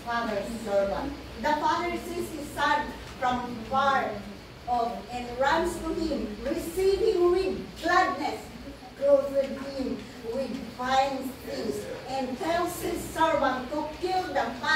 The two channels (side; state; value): both; identical; correlation 1.00